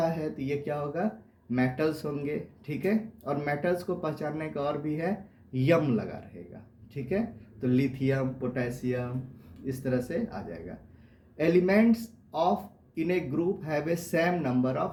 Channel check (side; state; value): both; identical; correlation 1.00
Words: है तो ये क्या होगा, मेटल्स होंगे, ठीक है। और मेटल्स को पहचानने का और भी है, यम लगा रहेगा, ठीक है। तो लिथियम, पोटेशियम, इस तरह से आ जाएगा। Elements of in A group have a same number